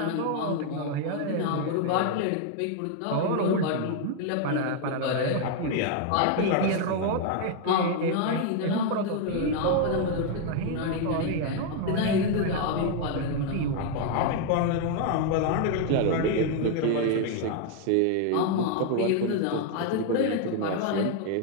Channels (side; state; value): both; different; correlation 0.00